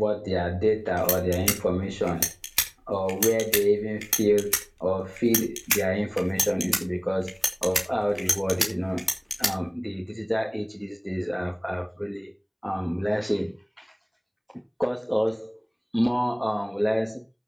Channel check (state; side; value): identical; both; correlation 1.00